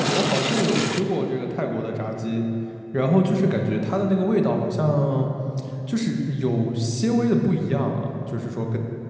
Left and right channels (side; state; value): both; identical; correlation 1.00